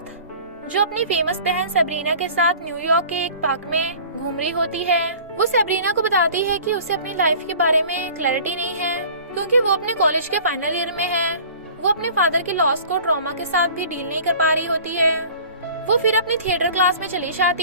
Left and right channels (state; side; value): inverted; both; correlation -0.45